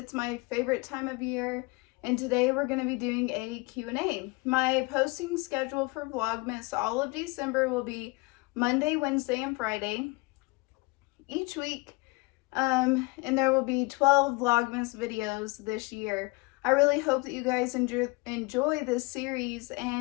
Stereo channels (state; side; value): quieter; right; 25.7 dB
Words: my favorite time of year, and today we're going to be doing a Q&A. My posting schedule for Vlogmas all of December will be Monday, Wednesday, and Friday each week, and there will be 12 Vlogmas videos this year. I really hope that you guys enjoy this series